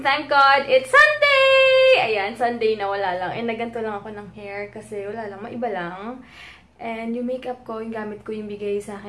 thank God, it's Sunday! Ayan, Sunday na wala lang. And naganto lang ako ng hair kasi wala lang, maiba lang. And yung makeup ko, yung gamit ko yung bigay sa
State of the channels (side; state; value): both; identical; correlation 1.00